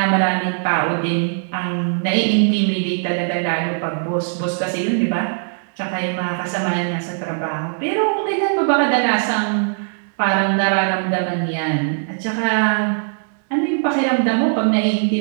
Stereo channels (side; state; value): left; silent; digital silence